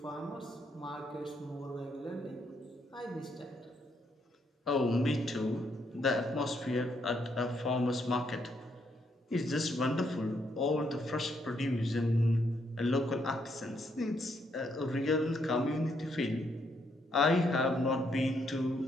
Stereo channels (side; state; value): both; normal; correlation 0.74